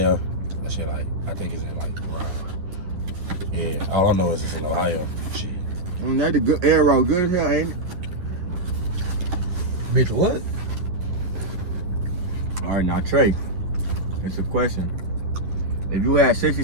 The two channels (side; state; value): left; late; 10 ms